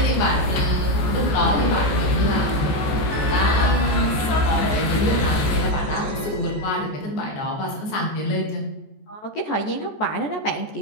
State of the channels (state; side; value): late; right; 14 ms